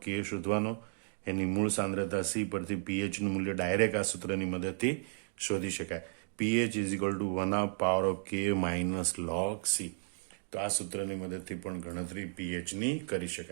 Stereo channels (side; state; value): left; silent; digital silence